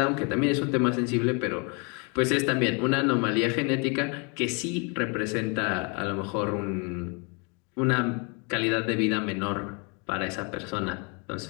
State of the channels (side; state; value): right; quieter; 33.1 dB